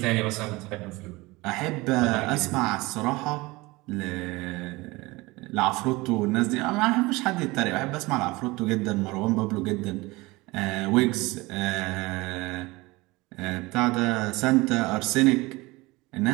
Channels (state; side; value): quieter; left; 22.2 dB